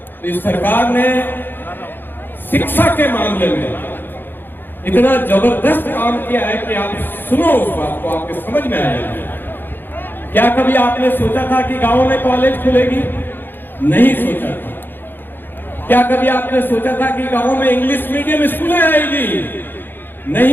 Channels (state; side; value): late; right; 0.096 ms